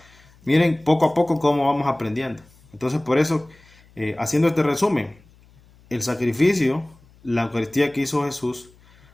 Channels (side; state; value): left; noise; hum, 28 dB below the sound